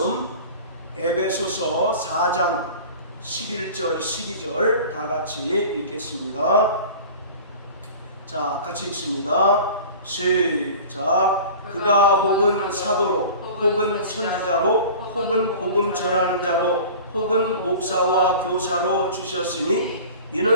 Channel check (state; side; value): inverted; both; correlation -0.39